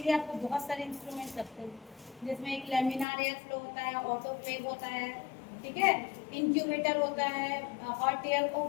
आपको बहुत सारे इंस्ट्रूमेंट लगते हैं, जिसमें एक लेमिनार एयर फ्लो होता है, ऑटोक्लेव होता है, ठीक है, इंक्यूबेटर होता है, हॉट एयर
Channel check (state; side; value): drops out; right; at 3.1 s